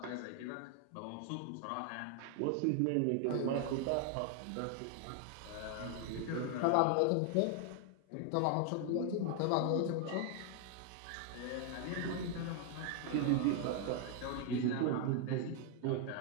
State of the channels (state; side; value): different; both; correlation 0.00